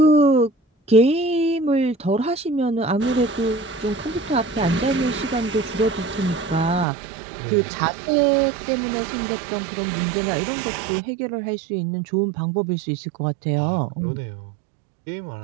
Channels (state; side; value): drops out; left; at 6.9 s